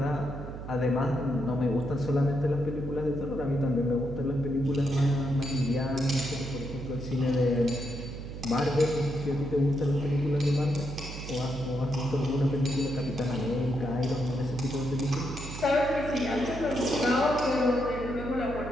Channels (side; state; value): right; noise; hum, 9 dB below the sound